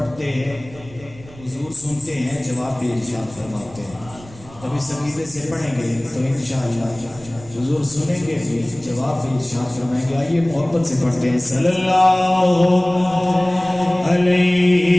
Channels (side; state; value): right; noise; rumble, 21 dB below the sound